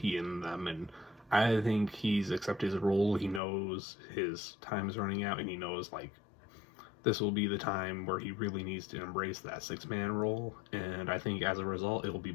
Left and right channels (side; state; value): right; drops out; at 3.4 s